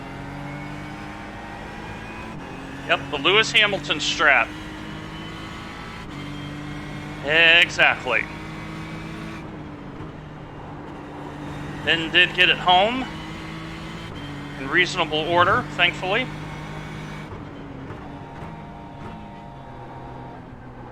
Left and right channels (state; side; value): identical; both; correlation 1.00